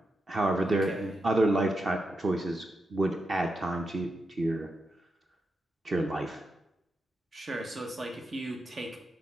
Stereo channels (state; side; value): normal; both; correlation 0.86